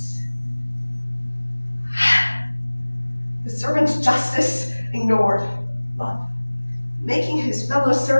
The servant's justice ignored love. Making his fellow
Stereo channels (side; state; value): both; inverted; correlation -1.00